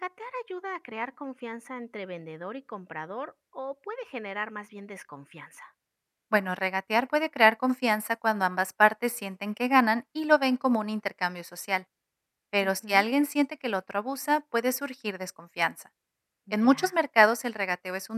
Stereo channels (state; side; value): identical; both; correlation 1.00